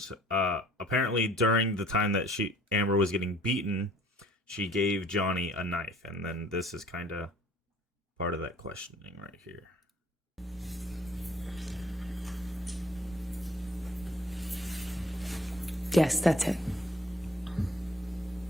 apparently during the time that Amber was getting beaten, she gave Johnny a knife, and then this is kind of part of that questioning right here. Yes, that's it.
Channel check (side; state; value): both; normal; correlation 0.55